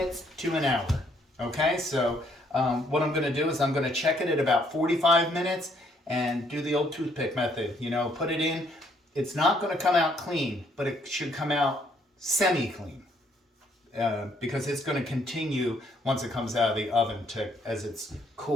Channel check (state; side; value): normal; both; correlation 0.68